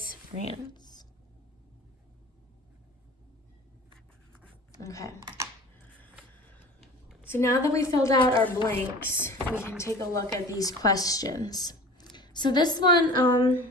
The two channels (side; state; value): both; normal; correlation 0.40